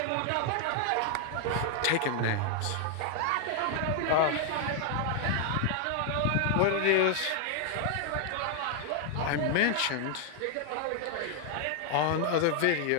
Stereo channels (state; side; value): different; both; correlation 0.00